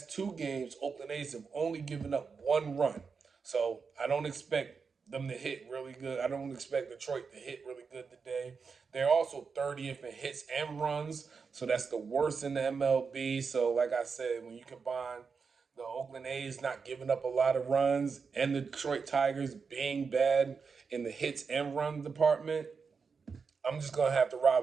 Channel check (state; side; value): quieter; left; 5.3 dB